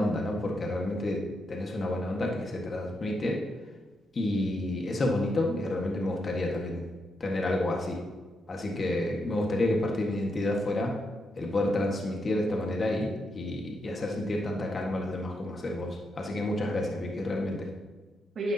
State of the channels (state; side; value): normal; both; correlation 0.82